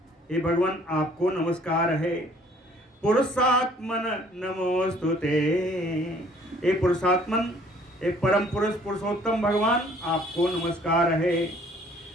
हे भगवान आपको नमस्कार है। पुरुषात्मन नमोस्तुते, हे पुरुषात्मन, हे परम पुरुष पुरुषोत्तम भगवान आपको नमस्कार है।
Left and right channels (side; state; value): both; normal; correlation 0.58